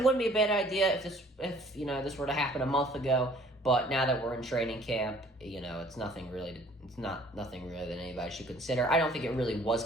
wouldn't be a bad idea if this were to happen a month ago. But now that we're in training camp, it's nothing really that anybody should consider. I don't think it really was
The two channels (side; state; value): both; normal; correlation 0.56